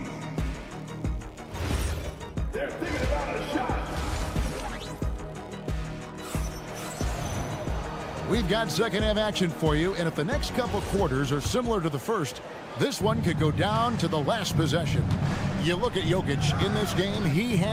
They're thinking about a shot. We've got second half action for you, and if the next couple quarters are similar to the first, this one could go down to the last possession. You look at Jokic in this game, he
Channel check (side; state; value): both; identical; correlation 1.00